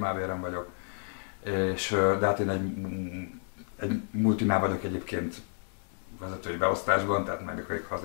vagyok. De hát én egy multinál vagyok egyébként vezetői beosztásban, tehát meg ha az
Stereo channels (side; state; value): right; silent; 57 dB below the other